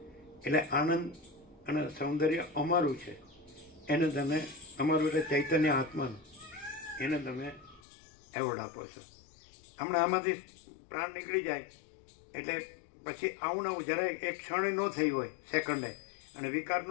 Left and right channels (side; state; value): right; drops out; at 7.8 s